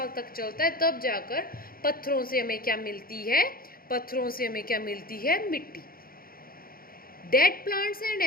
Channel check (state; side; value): late; right; 0.42 ms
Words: तक चलता है। तब जाकर पत्थरों से हमें क्या मिलती है? पत्थरों से हमें क्या मिलती है? मिट्टी। Dead plants and